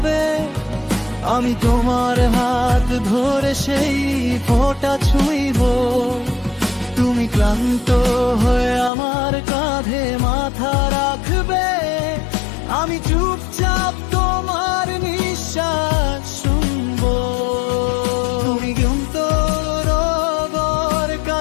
আমি তোমার হাত ধরে সেই ফোঁটা ছুঁইব। তুমি ক্লান্ত হয়ে আমার কাঁধে মাথা রাখবে, আমি চুপচাপ তোমার নিঃশ্বাস শুনবো। তুমি ক্লান্ত রোগর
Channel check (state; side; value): drops out; right; at 8.9 s